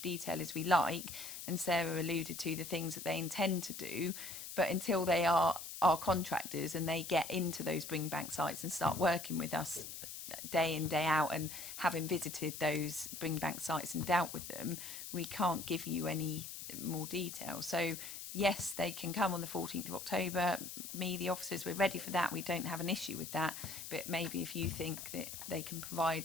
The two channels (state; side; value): noise; left; hiss, 9 dB below the sound